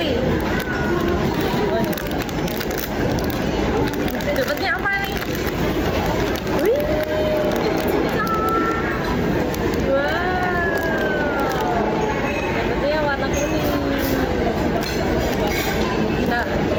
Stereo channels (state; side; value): identical; both; correlation 1.00